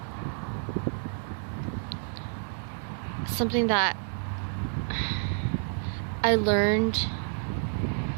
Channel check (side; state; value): left; silent; digital silence